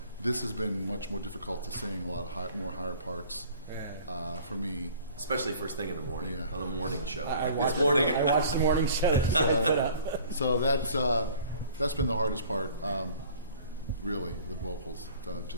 this has been much more difficult to sing, a lot of more higher parts for me. Especially first thing in the morning, Yeah. on the morning show. I Like watched, this morning. I watched the morning show. So that's been the hardest part, really, the vocals,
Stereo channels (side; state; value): both; inverted; correlation -0.49